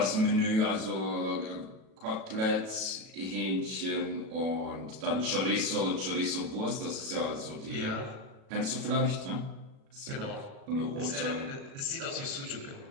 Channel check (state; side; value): late; left; 37 ms